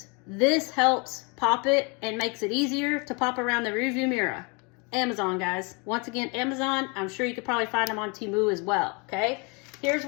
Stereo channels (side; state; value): right; quieter; 31.3 dB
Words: This helps pop it and makes it easier to pop around the rearview mirror. Amazon, guys. Once again, Amazon. I'm sure you could probably find them on Temu as well, okay? Here's